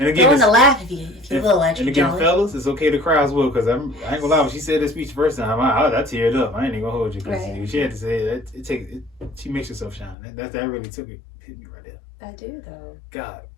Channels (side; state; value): right; drops out; at 10.2 s